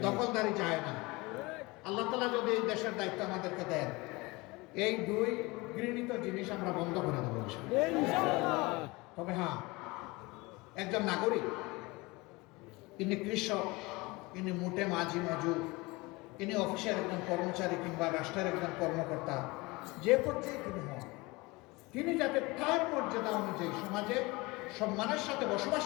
দখলদারি যায় না। আল্লাহ তাআলা যদি এই দেশের দায়িত্ব আমাদেরকে দেন, এই 2 ঘৃণিত জিনিস আমরা বন্ধ করে দেবো ইনশাআল্লাহ। তবে হ্যাঁ, একজন নাগরিক, তিনি কৃষক, তিনি মুটে মাঝি মজুর, তিনি অফিসের একজন কর্মচারী কিংবা রাষ্ট্রের একজন কর্মকর্তা, যে পর্যায়ে তিনি হন, তিনি যাতে তার মর্যাদা অনুযায়ী সমাজে সম্মানের সাথে বসবাস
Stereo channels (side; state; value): right; quieter; 23.7 dB